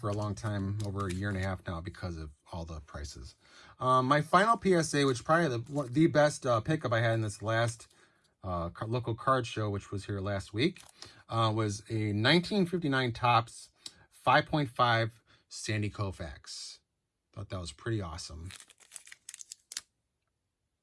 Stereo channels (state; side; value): identical; both; correlation 1.00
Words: a long time, over a year and a half now, because of all the prices. My final PSA, which probably the best pickup I had in this last local card show, which was here last week, was a 1959 Topps 5.5 Sandy Koufax. Thought that was pretty awesome.